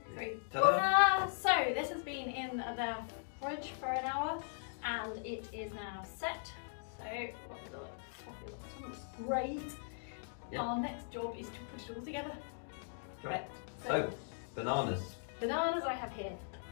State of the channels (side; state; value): right; silent; digital silence